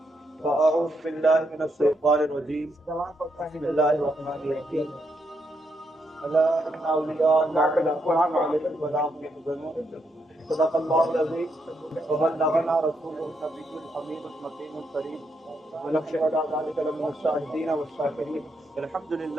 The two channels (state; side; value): normal; both; correlation 0.79